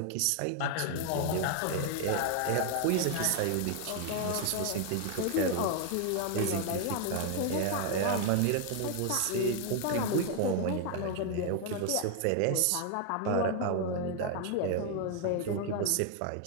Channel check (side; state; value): both; different; correlation 0.00